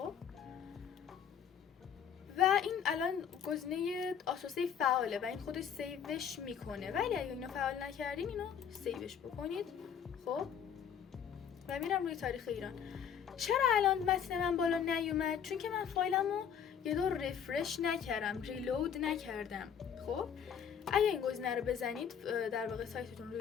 و این الان گزینه آتو سیو فعاله و این خودش سیوش میکنه، ولی اگه اینو فعال نکردین اینو سیوش بکنید. خب و میرم روی تاریخ ایران. چرا الان متن من بالا نیومد؟ چون که من فایلمو یه دور رفرش نکردم، ریلود نکردم. خب اگه این گزینه رو بزنید در واقع سایتتون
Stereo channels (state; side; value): quieter; right; 8.1 dB